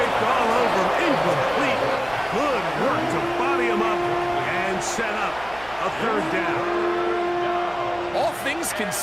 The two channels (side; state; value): right; noise; hum, 20 dB below the sound